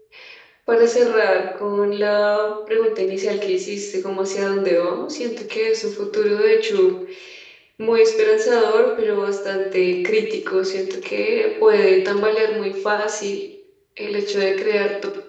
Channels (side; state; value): both; identical; correlation 1.00